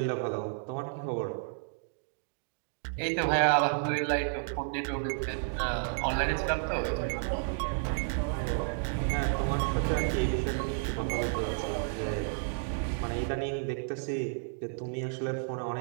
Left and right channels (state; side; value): silent; left; digital silence